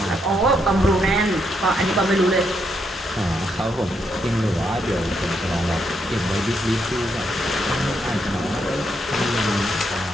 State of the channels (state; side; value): normal; both; correlation 0.78